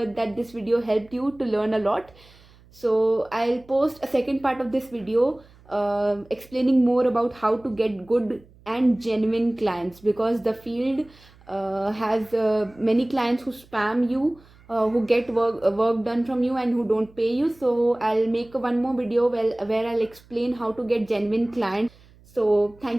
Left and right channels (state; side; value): noise; right; hum, 27 dB below the sound